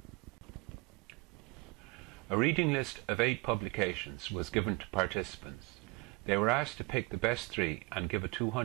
A reading list of 8 publications was given to participants. They were asked to pick the best 3 and give a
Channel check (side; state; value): left; quieter; 28.0 dB